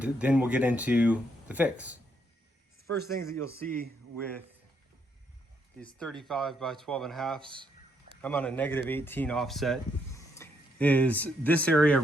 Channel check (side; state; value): both; normal; correlation 0.75